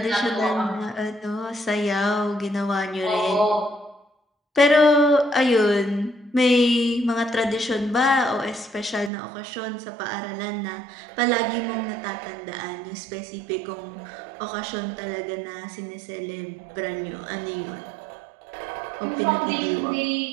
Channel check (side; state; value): left; drops out; at 9.1 s